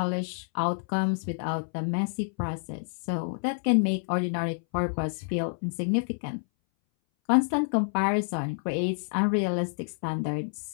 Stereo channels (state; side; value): silent; right; 59 dB below the other